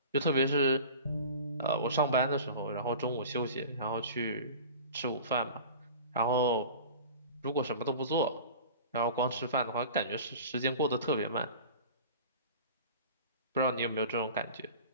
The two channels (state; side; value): inverted; both; correlation -0.38